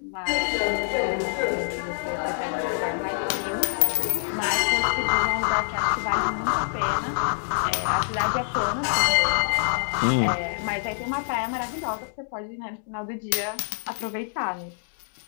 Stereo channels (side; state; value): right; silent; digital silence